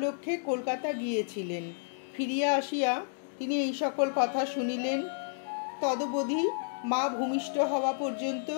কলকাতা গিয়েছিলেন। ফিরিয়া আসিয়া তিনি এই সকল কথা শুনিলেন। তদবধি মা ভূমিষ্ঠ হওয়া পর্যন্ত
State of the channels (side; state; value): right; silent; digital silence